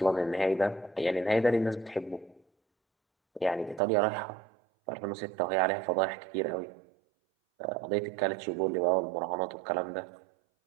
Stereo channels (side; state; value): left; drops out; at 3.8 s